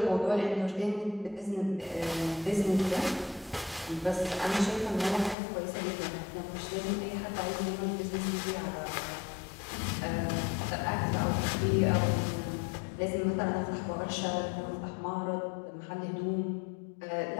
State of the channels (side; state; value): right; drops out; at 5.4 s